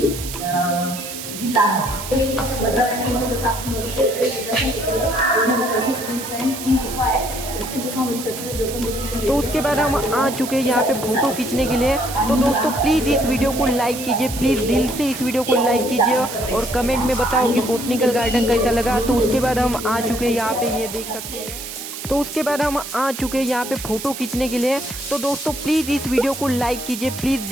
जिल्हा आहे. भद्रावती जसं आपण बघू शकतो 2000 वर्षापूर्वीचा ही गुफा आहे. प्रत्येक गुफामध्ये तो उसके बाद हम आ चुके हैं यहाँ पे फोटो खींचने के लिए। तो दोस्तों प्लीज़ इस वीडियो को लाइक कीजिए, प्लीज़ दिल से इस वीडियो को लाइक कीजिए और कमेंट में बताओ कि बोटनिकल गार्डन कैसा लगा। तो उसके बाद हम आ चुके हैं यहाँ पे, ये देख सकते हैं। तो उसके बाद हम आ चुके हैं यहाँ पे फ़ोटो खींचने के लिए। तो दोस्तों प्लीज़ इस वीडियो को लाइक कीजिए, प्लीज़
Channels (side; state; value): right; noise; hiss, 9 dB below the sound